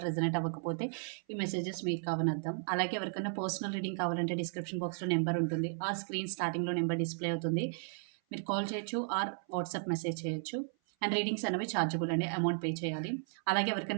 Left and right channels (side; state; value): left; silent; 55 dB below the other